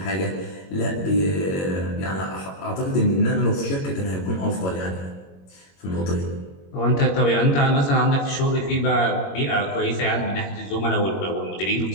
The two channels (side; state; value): right; late; 21 ms